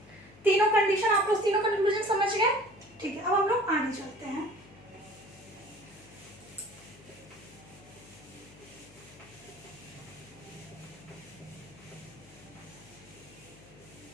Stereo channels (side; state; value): left; noise; hum, 23 dB below the sound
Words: तीनों कंडीशन आप लोग तीनों कंक्लूजन समझ गए, ठीक है। अब हम लोग आगे चलते हैं।